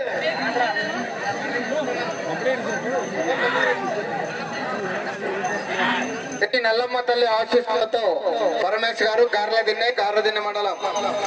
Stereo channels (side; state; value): both; identical; correlation 1.00